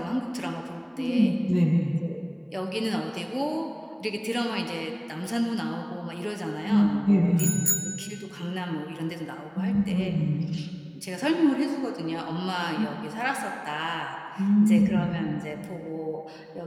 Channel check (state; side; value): identical; both; correlation 1.00